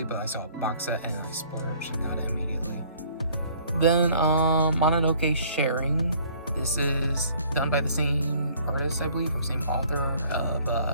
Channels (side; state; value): both; inverted; correlation -0.57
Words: but I saw a box set and I splurged and got it immediately. Then Mononoke Sharing. This is done by the same artist, I believe, or same author of